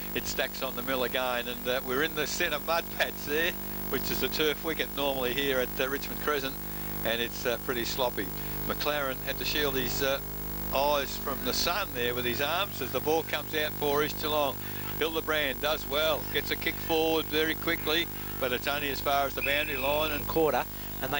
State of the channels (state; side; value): noise; left; hiss, 14 dB below the sound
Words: it stacks on the mill again, and we're in the centre mud patch there, which is the turf wicket normally here at Richmond Crescent, and it's pretty sloppy. McLaren had to shield his eyes from the sun there with his arms as the ball comes out for East Geelong. Hildebrand does well, gets a kick forward very quickly, but it's only as far as the boundary line. And quarter, and